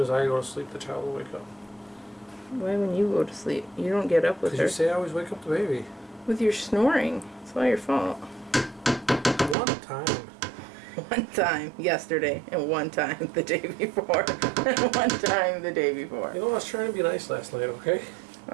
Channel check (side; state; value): left; drops out; at 9.6 s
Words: as I go to sleep, the child will wake up. Why when you go to sleep? You don't get up with her. Because you say I always wake up the baby. With your snoring. It's all your fault. One time. One time yesterday, and one time the day before, and one time the day before. You know, I was trying to be nice last night, okay?